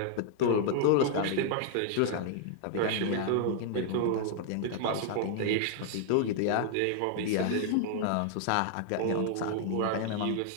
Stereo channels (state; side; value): different; both; correlation -0.01